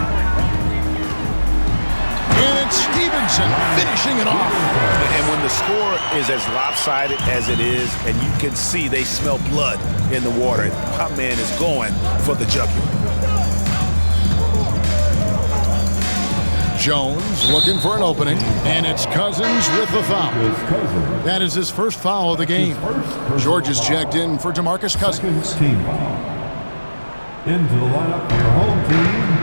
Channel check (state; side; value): inverted; both; correlation -1.00